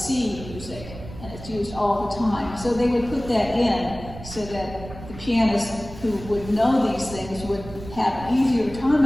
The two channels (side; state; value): right; noise; rumble, 14 dB below the sound